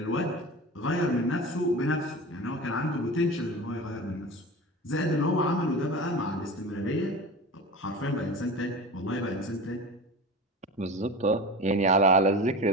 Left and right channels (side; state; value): both; normal; correlation 0.31